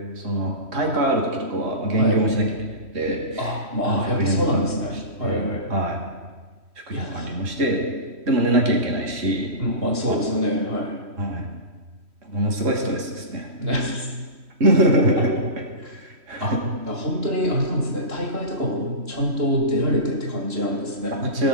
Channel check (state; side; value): late; left; 3.1 ms